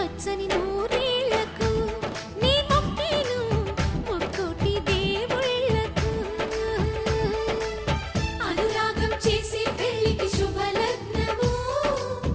నూరేళ్లకు నీ మొక్కేను ముక్కోటి దేవుళ్ళకు అనురాగం చేసే పెళ్లికి శుభలగ్నము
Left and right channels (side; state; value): both; identical; correlation 1.00